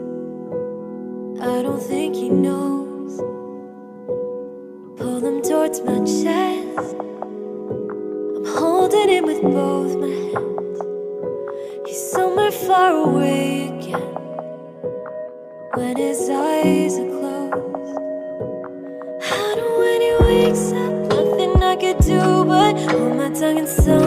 I don't think he knows. Pull them towards my chest. I'm holding him with both my hands. He's somewhere far away again when his eyes are closed. I know when he wakes up, nothing I could do but hold my tongue and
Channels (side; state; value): both; identical; correlation 1.00